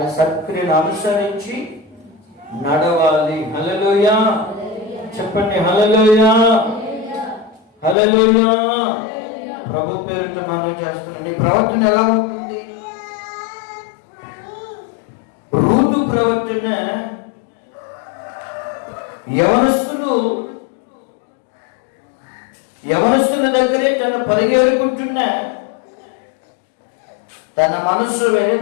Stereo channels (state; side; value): drops out; right; at 8.0 s